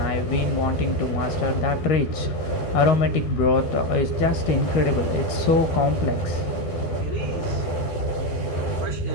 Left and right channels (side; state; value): right; late; 13 ms